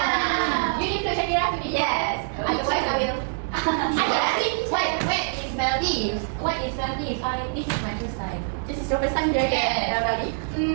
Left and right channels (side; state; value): left; silent; digital silence